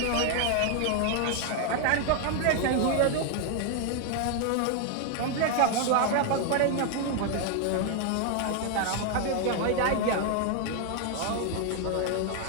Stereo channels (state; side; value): different; both; correlation 0.00